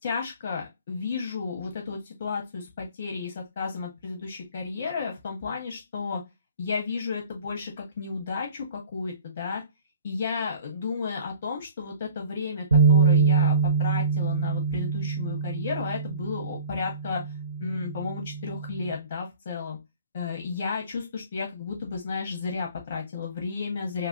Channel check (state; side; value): inverted; both; correlation -0.46